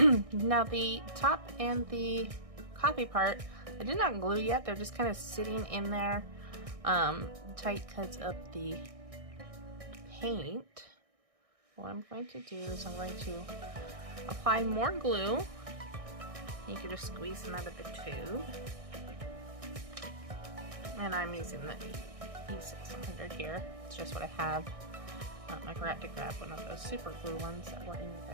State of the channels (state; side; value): late; left; 1.6 ms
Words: Now the top and the coffee part, I did not glue yet. They're just kind of sitting in there tight because of the paint. What I'm going to do is I'm going to apply more glue. You can just squeeze them out of the tube. And I'm using the E600 here. It's just what I have. I forgot to grab one of those super glue ones that were in your